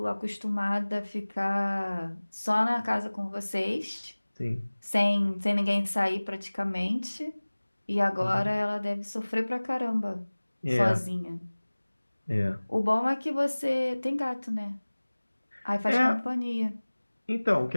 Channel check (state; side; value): inverted; both; correlation -1.00